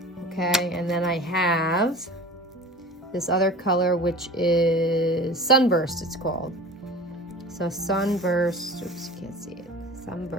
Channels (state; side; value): normal; both; correlation 0.37